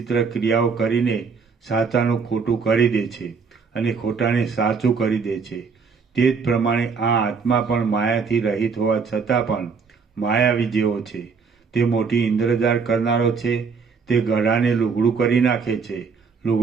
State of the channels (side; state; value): left; quieter; 5.4 dB